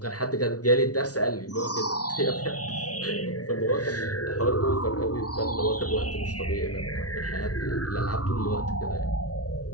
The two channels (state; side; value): late; right; 0.68 ms